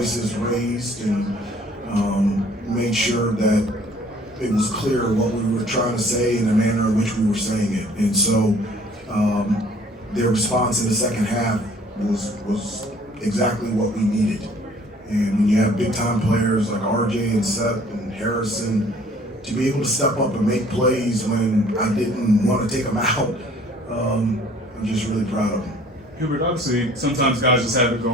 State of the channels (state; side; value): normal; both; correlation 0.55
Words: raised, and made sure that it was clear what we were trying to say and the manner in which we were saying it. And so their response in the second half was exactly what we needed. And when you have big time players like RJ and Seth and Harrison, to be able to step up and make plays when I didn't want to take them out, I'm just really proud of them. Hubert, obviously, sometimes guys just have it